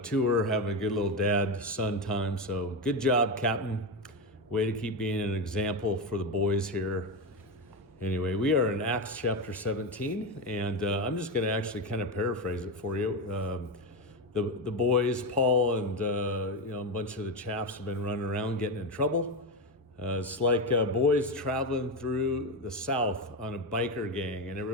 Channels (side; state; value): both; normal; correlation 0.14